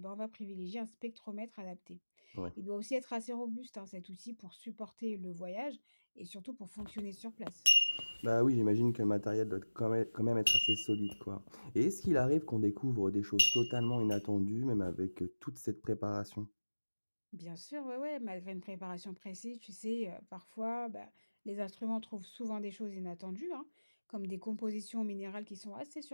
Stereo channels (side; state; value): both; inverted; correlation -1.00